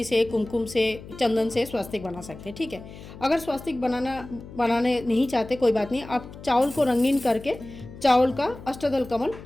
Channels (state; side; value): noise; left; hum, 15 dB below the sound